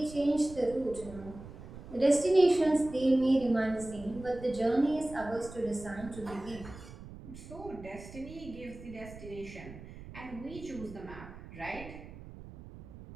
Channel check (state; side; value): noise; right; rumble, 15 dB below the sound